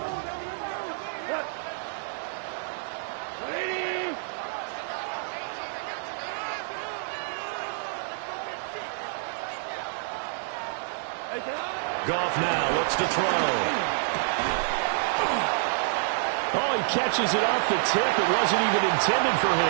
Goff now looks to throw. Oh, he catches it off the tip. It wasn't even intended for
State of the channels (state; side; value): silent; left; 59 dB below the other